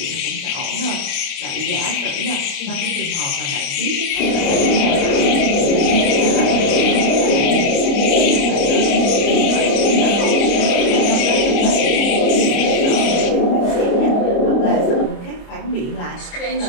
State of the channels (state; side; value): late; right; 29 ms